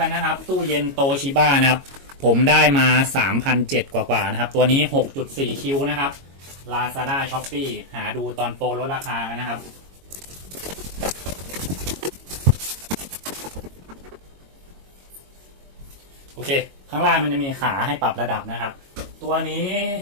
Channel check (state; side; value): late; left; 22 ms